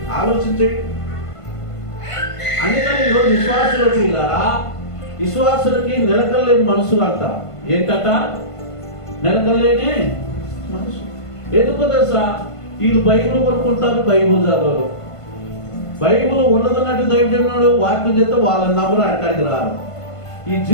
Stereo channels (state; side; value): late; right; 1.5 ms